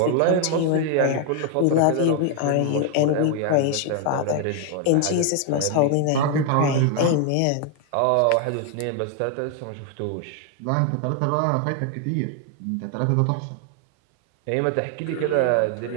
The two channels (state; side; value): different; both; correlation 0.00